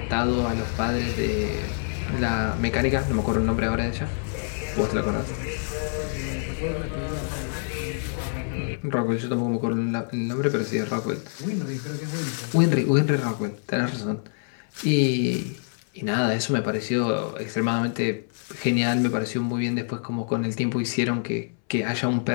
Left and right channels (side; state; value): right; silent; 61 dB below the other